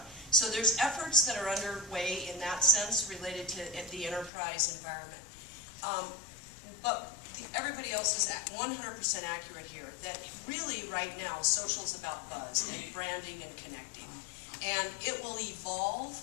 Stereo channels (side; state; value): right; drops out; at 4.3 s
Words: So there's efforts that are underway in that sense related to the enterprise environment. But everybody else is 100% accurate here, that really right now social is about buzz and branding and connecting. And it will evolve